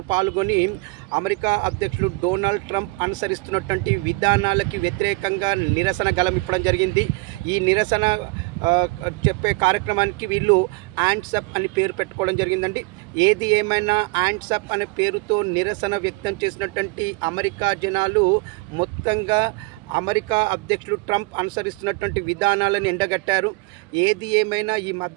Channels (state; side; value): quieter; left; 26.1 dB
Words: పాల్గొని అమెరికా అధ్యక్షుడు డొనాల్డ్ ట్రంప్ అనుసరిస్తున్నటువంటి విధానాలకి వ్యతిరేకంగా నిరసన గళమిప్పడం జరిగింది. ఈ నిరసన చెప్పే కార్యక్రమానికి వీళ్ళు హ్యాండ్స్ అప్ అని పేరు పెట్టుకోవడం జరిగిందండి. ఏది ఏమైనా హ్యాండ్స్ అప్ అనే పేరుతో నిరసన వ్యక్తం చేసినటువంటి అమెరికా జనాలు మొత్తంగా అమెరికా అధ్యక్షుడు ట్రంప్ అనుసరిస్తున్నటువంటి విధానాలను ఎండగట్టారు. ఏది ఏమైనా ఈ